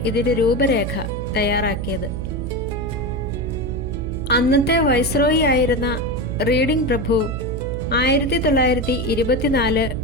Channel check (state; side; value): noise; right; hum, 5 dB below the sound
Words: ഇതിന്റെ രൂപരേഖ തയ്യാറാക്കിയത്. അന്നത്തെ വൈസ്രോയി ആയിരുന്ന റീഡിംഗ് പ്രഭു 1924